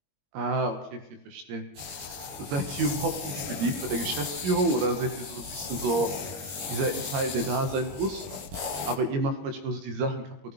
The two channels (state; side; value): late; left; 21 ms